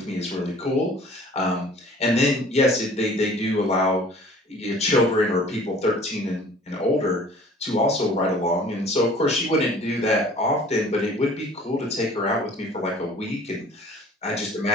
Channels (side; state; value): both; normal; correlation 0.50